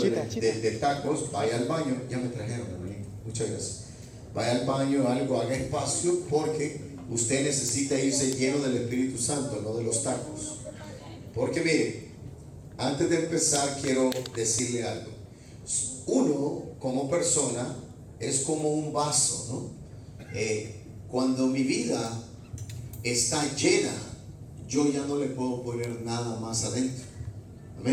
tacos, vaya al baño. Ya me trajeron, hermanito. Muchas gracias. Vaya al baño, haga espacio, porque usted necesita irse lleno del Espíritu Santo, no de los tacos. Porque mire, antes de empezar quiero decirle algo. Uno, como persona, es como un vaso, ¿no? Cuando mi vida está llena, yo ya no le puedo poner nada más adentro.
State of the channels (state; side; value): identical; both; correlation 1.00